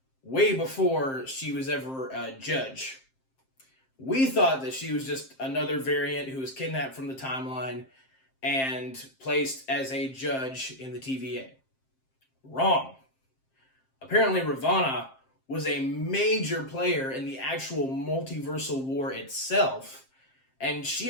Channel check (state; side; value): late; right; 7.6 ms